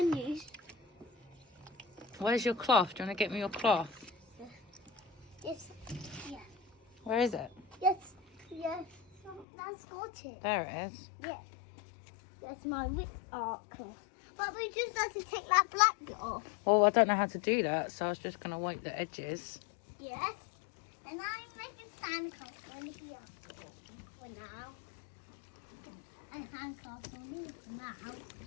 juice. Where's your cloth? Do you want to get me your cloth? Yes, yeah. Where is it? Yes, yes. That's got it. There it is. Yes. That's my whip art cloth. But we just have to take that black bit off. Well, I don't know how to do that, so I was just going to wipe the edges. Yes. And I'm making sandcastles on here for now. And sandcastles on here for now.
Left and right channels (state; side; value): drops out; right; at 9.5 s